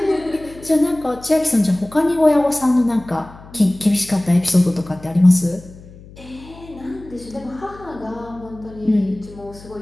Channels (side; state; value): left; noise; hum, 20 dB below the sound